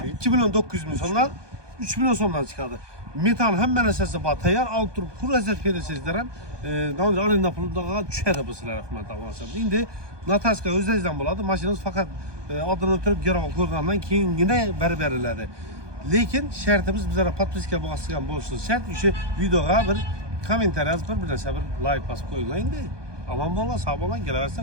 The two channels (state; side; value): late; left; 1.2 ms